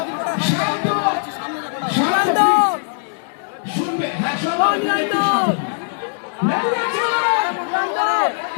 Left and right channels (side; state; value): right; silent; 66 dB below the other